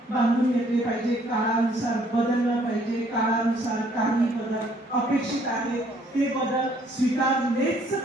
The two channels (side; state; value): both; normal; correlation 0.63